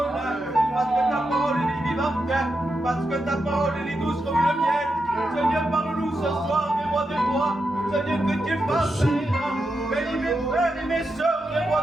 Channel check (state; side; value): normal; both; correlation 0.86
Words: parce que ta parole est vivante, parce que ta parole est douce comme le miel. Seigneur, parle-nous ce soir des rois des rois. Seigneur, que tu fasses bénis mes frères et mes sœurs, les